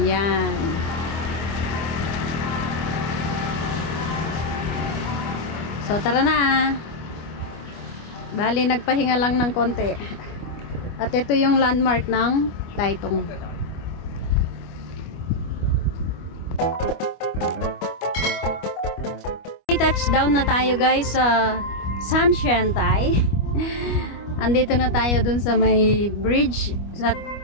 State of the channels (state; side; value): late; right; 25 ms